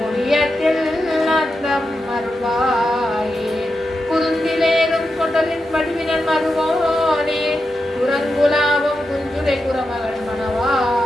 ஓவியத்தில் அந்தம் அருள்வாயே குருந்திலேறும் கொண்டலின் வடிவினன் மருவோனே குரங்குலாவும் குஞ்சுரை குரமகள்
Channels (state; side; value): normal; both; correlation 0.88